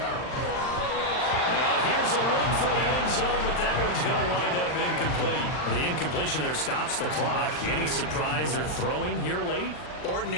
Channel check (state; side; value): late; right; 39 ms